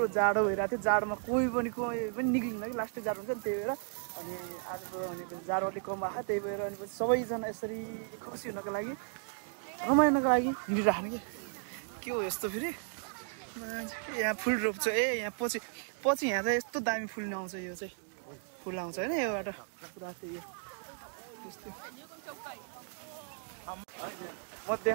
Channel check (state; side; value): silent; left; 55 dB below the other